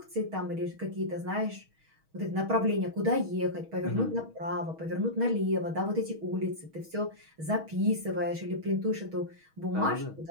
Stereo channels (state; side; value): late; left; 6.3 ms